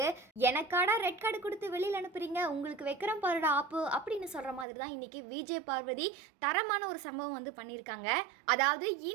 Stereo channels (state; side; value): drops out; left; at 4.7 s